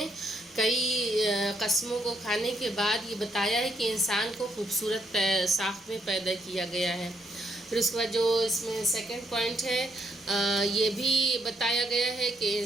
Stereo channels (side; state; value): both; normal; correlation 0.73